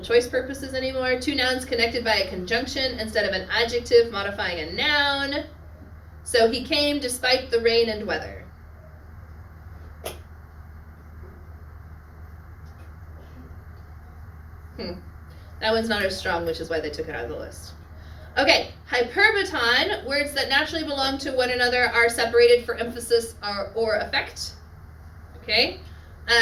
choice purposes anymore. Two nouns connected by a conjunction instead of an adjective modifying a noun. So he came despite the rain and weather. That one's not as strong, which is why they took it out of the list. Okay, hyperbaton, words that naturally belong to one another are separated for emphasis or effect. Okay,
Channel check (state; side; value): identical; both; correlation 1.00